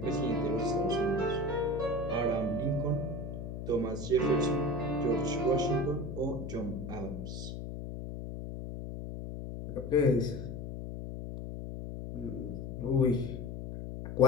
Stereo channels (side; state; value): left; noise; hum, 7 dB below the sound